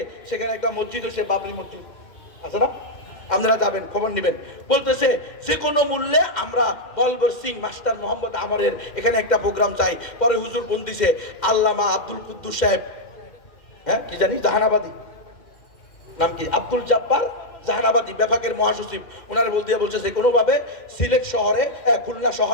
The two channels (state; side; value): late; right; 2.1 ms